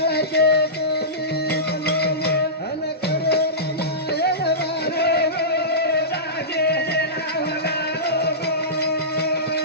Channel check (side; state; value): both; normal; correlation -0.19